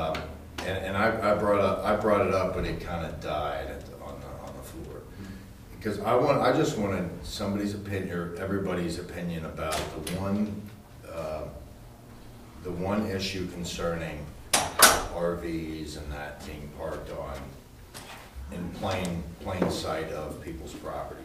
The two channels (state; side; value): identical; both; correlation 1.00